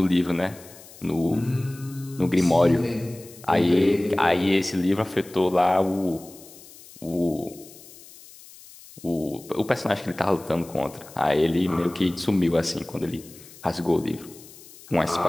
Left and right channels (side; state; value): left; noise; hiss, 20 dB below the sound